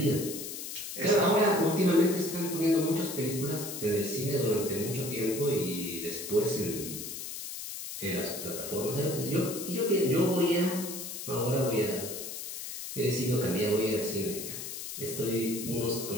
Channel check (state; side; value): noise; left; hiss, 8 dB below the sound